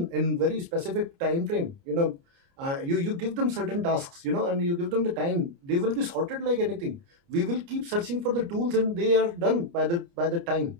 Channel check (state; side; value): late; left; 29 ms